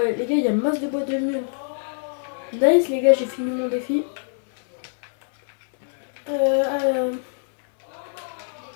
les gars, il y a masse de bois de mule. Nice les gars, j'ai fini mon défi.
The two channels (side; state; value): right; silent; digital silence